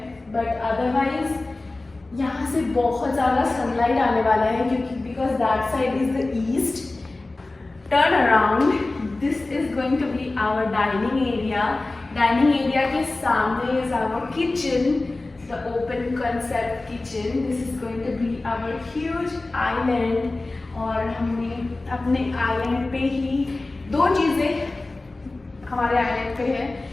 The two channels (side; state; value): right; quieter; 3.1 dB